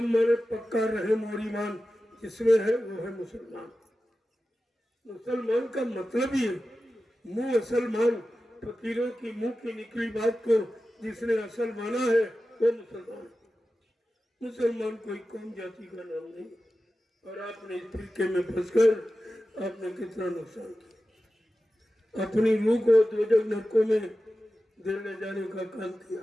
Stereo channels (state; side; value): normal; both; correlation 0.94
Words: माने पक्का रहम और ईमान जिसमें है वो है मुसलमान। मुसलमान का मतलब ही मुंह असल मान, फकीरों की मुंह की निकली बात को जिसने असल माना है वो मुसलमान। मुसलमान कोई कौम जाति का नाम नहीं। और आपने इस फिरके में फंसकर आपने कितना नुकसान किया, अपनी रूह को दोजख नरकों में देने जाने का काम किया।